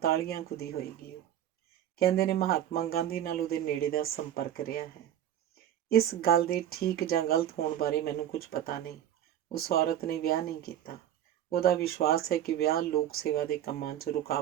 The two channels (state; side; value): quieter; left; 11.1 dB